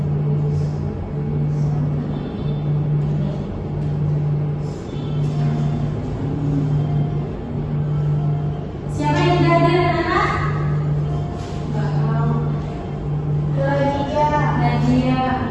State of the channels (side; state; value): both; identical; correlation 1.00